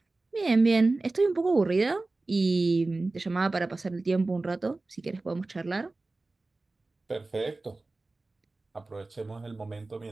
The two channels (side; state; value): left; quieter; 3.2 dB